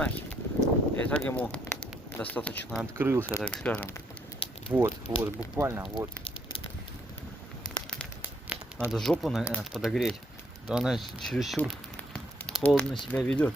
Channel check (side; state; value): both; normal; correlation 0.71